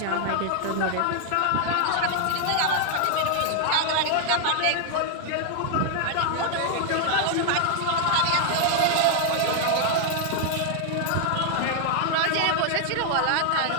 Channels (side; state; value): both; different; correlation 0.00